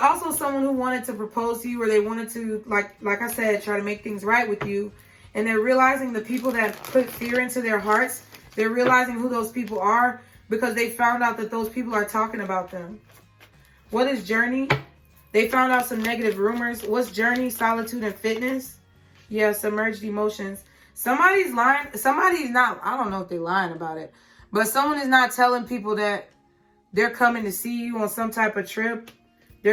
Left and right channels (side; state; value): both; identical; correlation 1.00